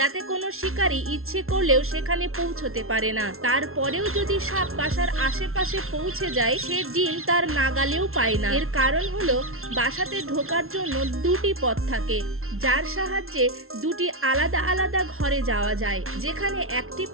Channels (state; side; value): late; left; 0.62 ms